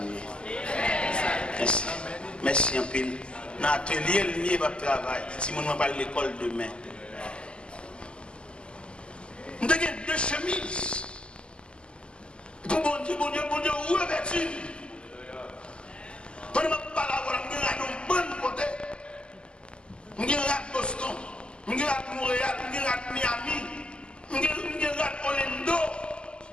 Merci. Merci un peu. Dans l'atelier, le mieux va travailler. Si je vais à l'école demain. Nous avons 2 chemises. Pour bon Dieu, revêtu. Quand je parle à vous, je vais un bon côté. Je vais à Boston, je vais à Montréal, je vais à Miami, je vais à Orlando.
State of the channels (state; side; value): late; right; 0.051 ms